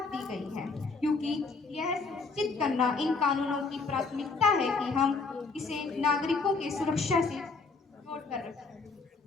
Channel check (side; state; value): right; quieter; 4.3 dB